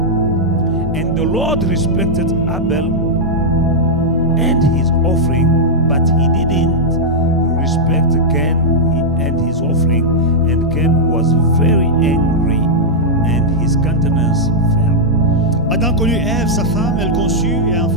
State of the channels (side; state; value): both; normal; correlation -0.06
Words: And the Lord respected Abel and his offering, but he didn't respect Cain and his offering, and Cain was very angry, and his countenance fell. Adam connut Ève, sa femme, elle conçut et